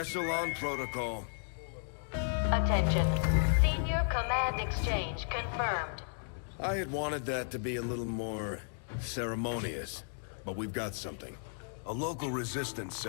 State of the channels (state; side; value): silent; right; digital silence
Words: Protocol. Attention. Senior command exchange confirmed. I had wanted that to be a little more ceremonious, but we've got something. A local resistance